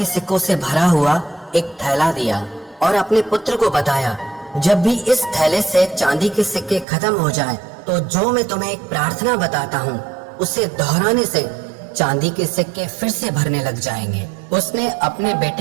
सिक्कों से भरा हुआ एक थैला दिया और अपने पुत्र को बताया, जब भी इस थैले से चांदी के सिक्के खत्म हो जाएं, तो जो मैं तुम्हें एक प्रार्थना बताता हूँ उसे दोहराने से चांदी के सिक्के फिर से भरने लग जाएंगे। उसने अपने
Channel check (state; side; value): drops out; left; at 6.9 s